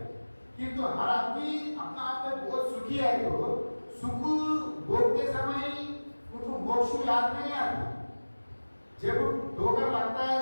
किंतु हर आदमी अपना आप में बहुत सुखी है, तो सुख भोगते समय उनको मोक्ष याद नहीं आती। जब ठोकर लगता है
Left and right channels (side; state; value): both; inverted; correlation -1.00